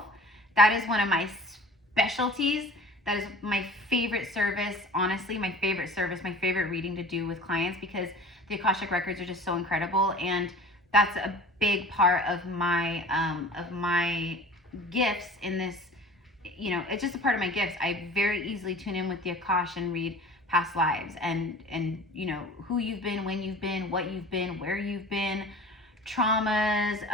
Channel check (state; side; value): normal; both; correlation 0.42